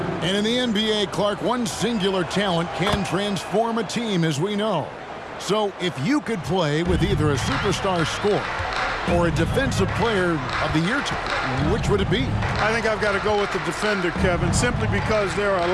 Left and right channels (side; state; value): both; identical; correlation 1.00